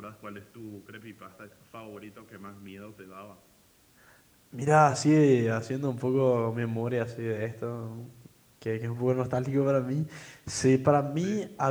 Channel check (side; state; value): both; identical; correlation 1.00